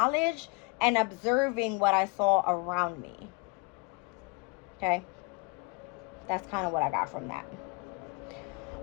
and observing what I saw around me. Okay, that's kind of what I got from that.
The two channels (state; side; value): quieter; right; 29.0 dB